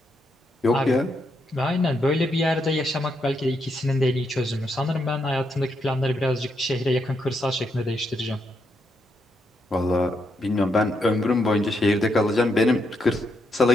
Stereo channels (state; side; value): normal; both; correlation 0.79